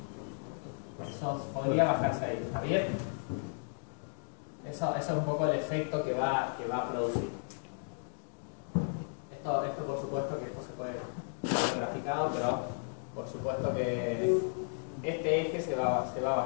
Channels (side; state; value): right; silent; digital silence